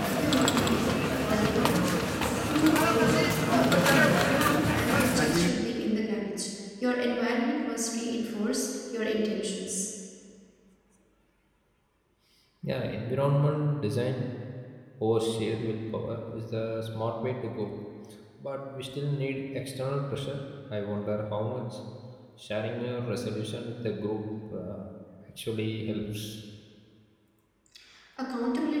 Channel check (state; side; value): identical; both; correlation 1.00